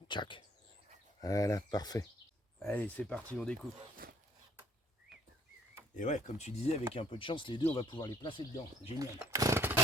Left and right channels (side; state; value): both; normal; correlation 0.58